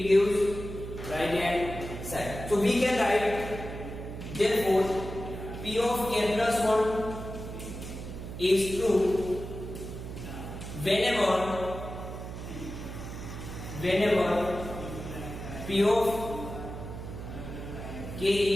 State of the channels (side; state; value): right; noise; hum, 9 dB below the sound